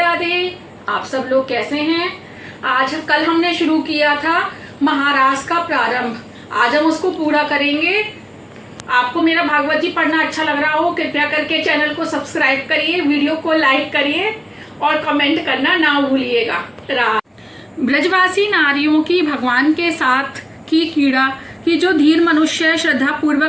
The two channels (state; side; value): identical; both; correlation 1.00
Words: आप सब लोग कैसे हैं? कल हमने शुरू किया था महारास का प्रारंभ। आज हम उसको पूरा करेंगे। आपको मेरा भागवत जी पढ़ना अच्छा लग रहा हो, कृपया करके चैनल को सब्सक्राइब करिए, वीडियो को लाइक करिए और कमेंट करना ना भूलिएगा। ब्रजवासी नारियों की भगवान के साथ की क्रीड़ा की जो धीर मनुष्य श्रद्धा